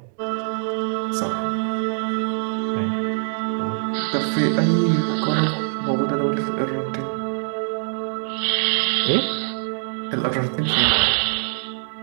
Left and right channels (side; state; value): left; silent; digital silence